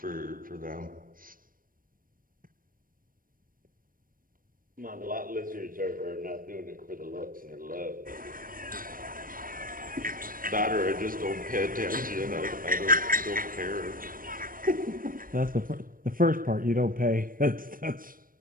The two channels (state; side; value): late; left; 0.41 ms